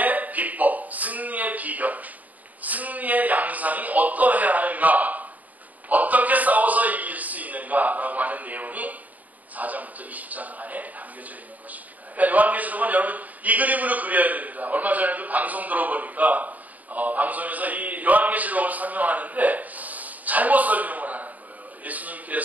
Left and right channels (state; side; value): late; left; 0.077 ms